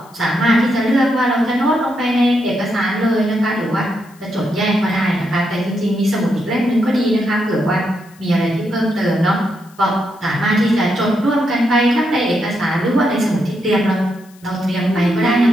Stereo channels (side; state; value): left; noise; hiss, 28 dB below the sound